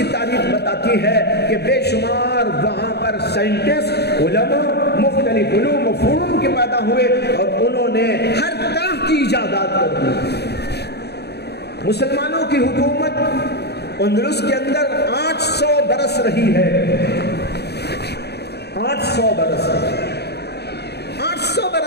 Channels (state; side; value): late; right; 0.48 ms